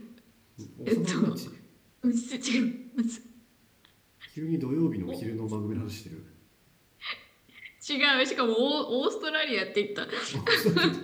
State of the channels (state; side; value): identical; both; correlation 1.00